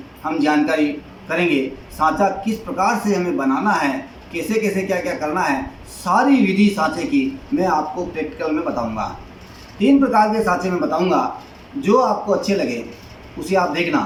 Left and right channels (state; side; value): identical; both; correlation 1.00